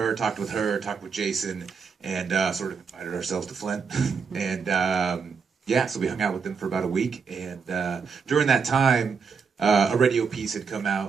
talked with Jason, and sort of invited ourselves to Flint, and so we hung out with them for about a week, and during that time, a radio piece had come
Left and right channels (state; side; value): quieter; left; 5.7 dB